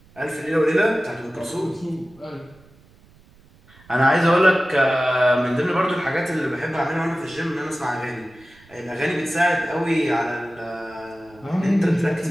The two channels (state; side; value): noise; right; rumble, 27 dB below the sound